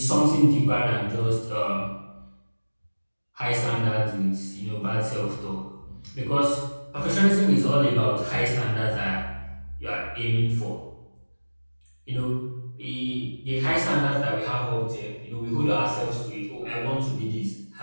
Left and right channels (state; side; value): inverted; both; correlation -1.00